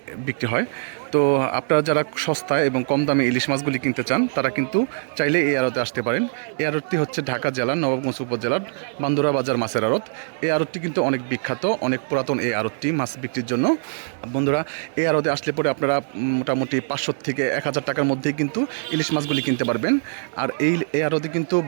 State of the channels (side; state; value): left; silent; digital silence